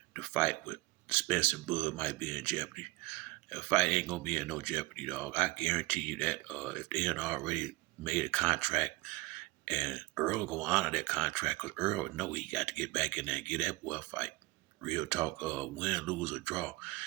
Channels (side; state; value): left; quieter; 22.0 dB